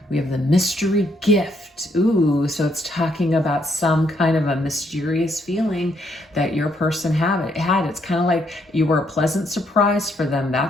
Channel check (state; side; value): normal; both; correlation 0.73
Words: We have the mystery gift. Ooh, so it's talking about some kind of a mysterious feeling that your person had. It's kind of like you were a pleasant surprise for them,